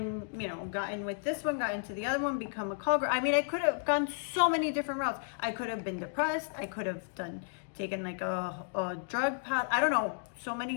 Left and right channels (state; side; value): silent; right; digital silence